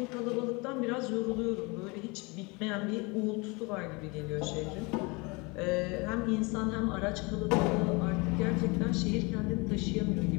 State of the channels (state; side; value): quieter; right; 27.4 dB